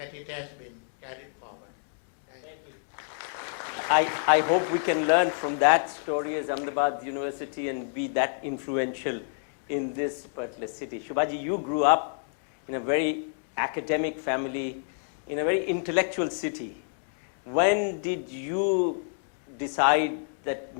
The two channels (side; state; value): right; silent; digital silence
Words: it has been carried forward. Thank you. I hope we can learn from that story as Ahmedabad University and be that influential in this particular city. Shubhaji, you grew up in a very academic family, in a very intellectual city. When did you decide that